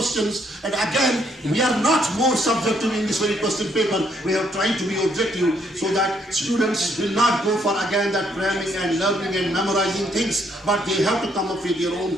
and again, we are not more subjective in this very question paper. We are trying to be objective so that students will not go for again that cramming and learning and memorizing things, but they have to come up with their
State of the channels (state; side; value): normal; both; correlation 0.70